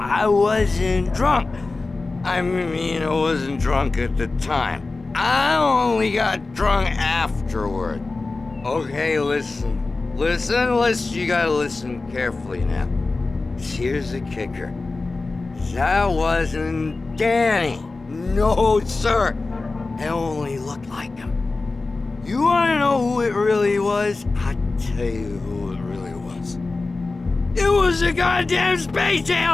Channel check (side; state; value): right; quieter; 3.5 dB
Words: wasn't drunk. I mean, I wasn't drunk at the time. I only got drunk afterward. Okay, listen, you gotta listen carefully now. Here's the kicker. That wasn't Danny. No, sir. It only looked like him. You wanna know who it really was? I'll tell you who it really was. It was a goddamn space